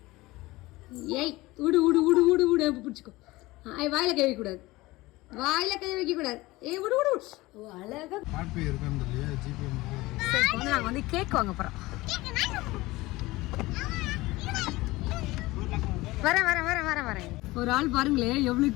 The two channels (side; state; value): right; quieter; 20.0 dB